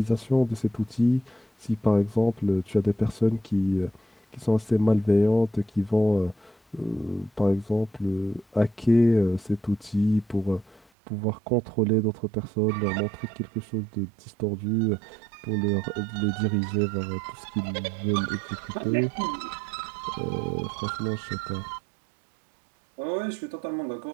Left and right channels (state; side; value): drops out; left; at 10.9 s